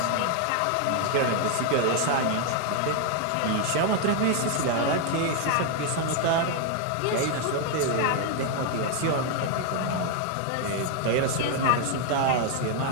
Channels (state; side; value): different; both; correlation 0.01